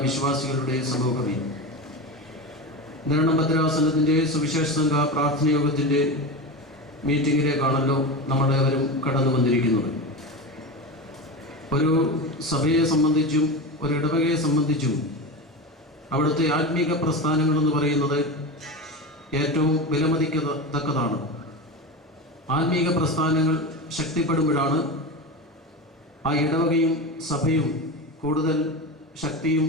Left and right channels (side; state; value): both; normal; correlation 0.23